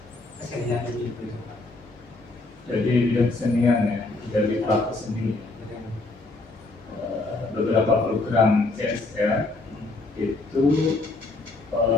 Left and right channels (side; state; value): right; quieter; 3.2 dB